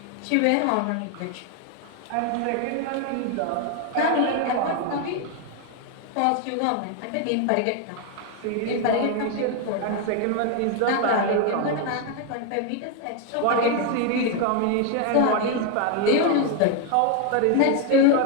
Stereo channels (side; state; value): both; different; correlation 0.01